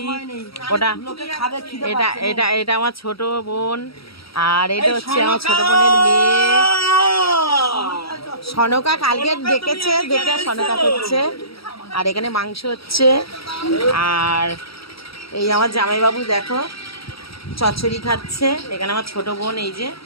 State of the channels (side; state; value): right; late; 0.76 ms